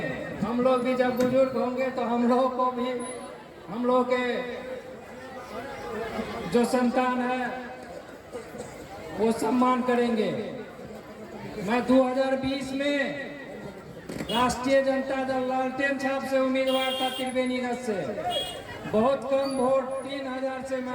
हम लोग भी जब बुजुर्ग होंगे तो हम लोग को भी, हम लोग के जो संतान है वो सम्मान करेंगे। मैं 2020 में राष्ट्रीय जनता दल लालटेन छाप से उम्मीदवार था त्रिवेणीगंज से। बहुत कम वोट 3000 से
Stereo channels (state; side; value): identical; both; correlation 1.00